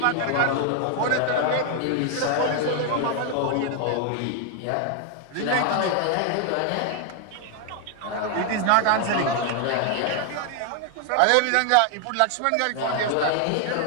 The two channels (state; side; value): different; both; correlation 0.00